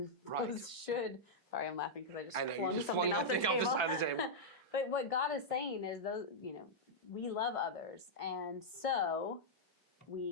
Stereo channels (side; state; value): both; normal; correlation -0.07